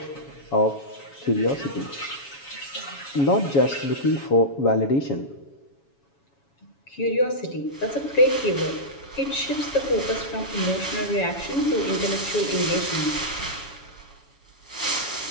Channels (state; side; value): late; right; 7.1 ms